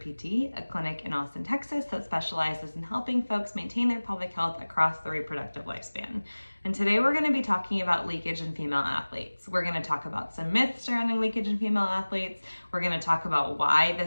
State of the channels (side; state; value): both; inverted; correlation -1.00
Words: PT, a clinic in Austin, Texas that specializes in helping folks maintain their pelvic health across the reproductive lifespan. And today we're going to be talking about leakage in female athletes. We're going to talk about some myths surrounding leakage in female athletes. We're going to talk about why